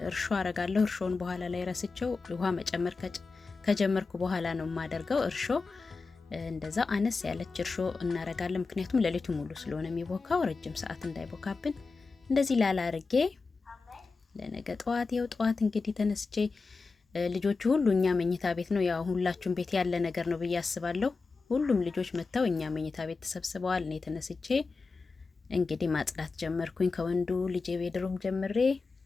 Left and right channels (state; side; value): quieter; right; 4.2 dB